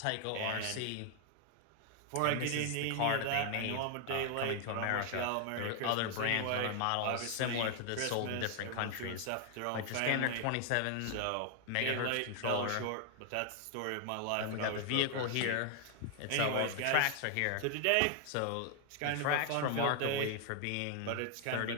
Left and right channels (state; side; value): different; both; correlation 0.00